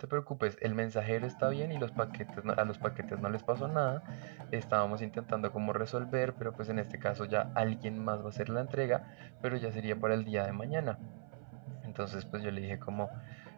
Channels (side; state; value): left; silent; 52 dB below the other